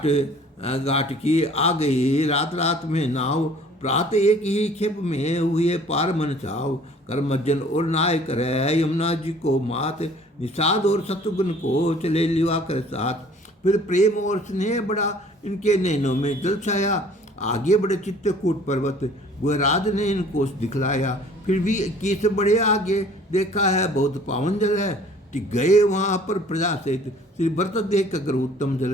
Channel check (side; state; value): both; normal; correlation 0.52